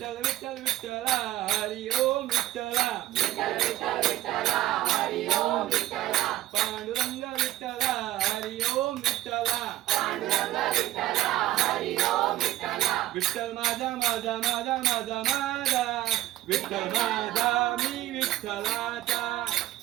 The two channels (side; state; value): left; quieter; 15.0 dB